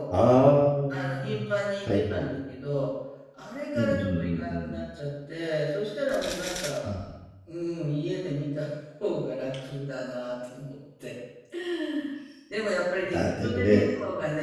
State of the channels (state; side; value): identical; both; correlation 1.00